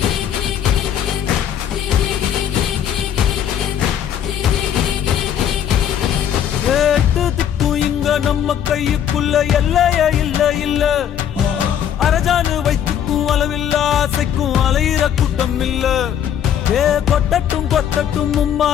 நம்ம கையுக்குள்ள எல்லைய இல்ல இல்ல அரஜானு வைத்துக்கும் அளவில்ல ஆசைக்கும் அலையிற கூட்டம் இல்ல ஏ கொட்டட்டும் கொட்டட்டும்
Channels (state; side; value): quieter; right; 9.5 dB